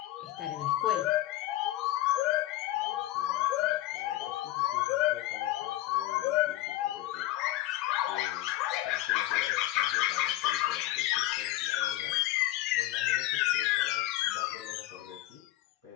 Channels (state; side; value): quieter; right; 15.8 dB